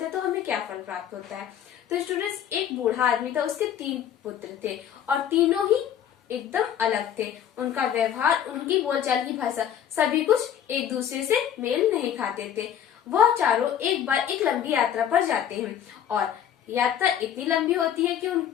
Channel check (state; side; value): quieter; right; 9.6 dB